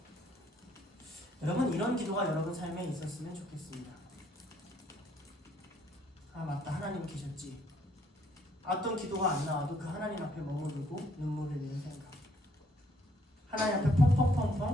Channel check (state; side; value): normal; both; correlation 0.67